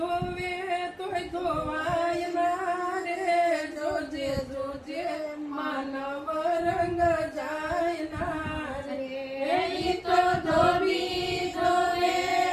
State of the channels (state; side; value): identical; both; correlation 1.00